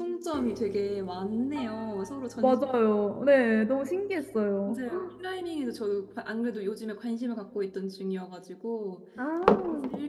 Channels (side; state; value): both; identical; correlation 1.00